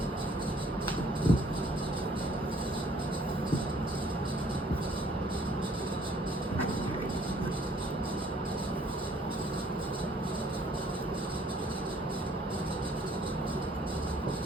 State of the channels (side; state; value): both; normal; correlation 0.60